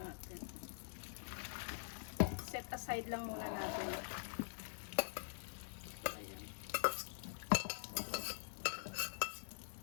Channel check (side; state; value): right; silent; digital silence